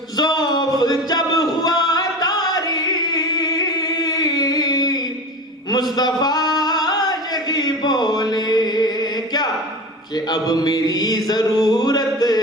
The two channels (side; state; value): both; normal; correlation 0.31